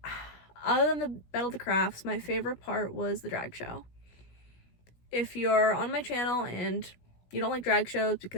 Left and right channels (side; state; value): right; late; 17 ms